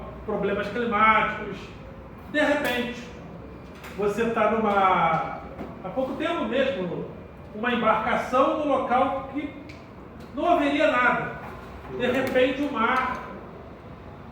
problemas climáticos. De repente, você está há pouco tempo mesmo, uma embarcação no local que não haveria nada. De repente o mar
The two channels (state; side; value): identical; both; correlation 1.00